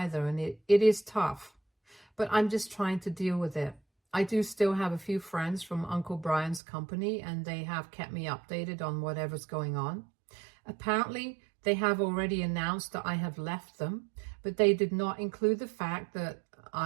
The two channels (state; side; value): drops out; left; at 6.6 s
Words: and it is tough, but I'm just trying to deal with it. I do still have a few friends from Uncle Brian's company, and they have kept me updated on whatever's going on. Apparently, they have already announced that I have left them, but they did not include the fact that